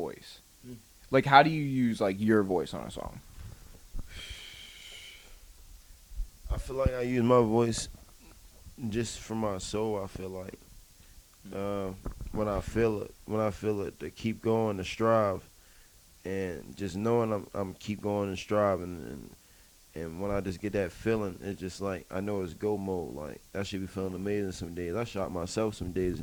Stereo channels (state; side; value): identical; both; correlation 1.00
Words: Like how do you use like your voice on a song? I feel like I use my voice just for my soul. I feel like when I feel it to keep going, to strive, and just knowing I'm keep going and striving, and when I just get that feeling, it's just like I know it's go mode. Like I should be feeling amazing some days. I shot myself some days